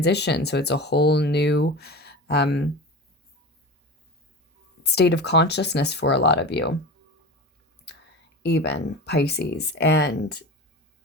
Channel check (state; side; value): normal; both; correlation 0.31